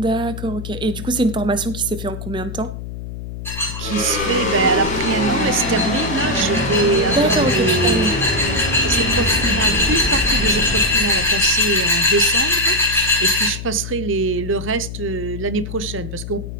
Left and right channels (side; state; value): left; noise; hum, 9 dB below the sound